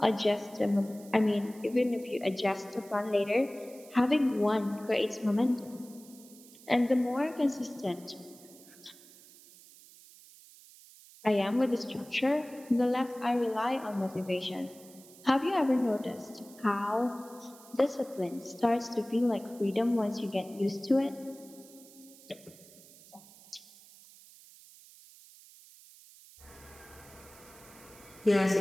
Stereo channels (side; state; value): right; noise; hiss, 22 dB below the sound